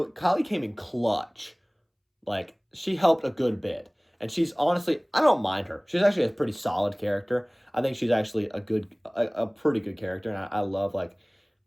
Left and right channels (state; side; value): identical; both; correlation 1.00